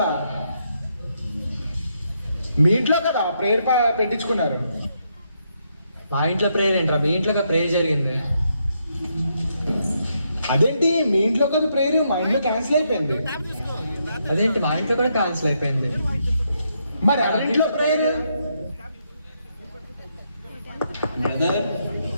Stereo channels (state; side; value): inverted; both; correlation -0.78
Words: మీ ఇంట్లో కదా ప్రేయర్ పెట్టించుకున్నారు. మా ఇంట్లో ప్రేయర్ ఏంట్రా, మీ ఇంట్లో ప్రేయర్ జరిగింది. అదేంటి మీ ఇంట్లో కదా ప్రేయర్, మా ఇంట్లో క్యాన్సిల్ అయిపోయింది. అదేంటి మా ఇంట్లో కూడా క్యాన్సిల్ అయిపోయింది. మరి ఎవరింట్లో ప్రేయర్?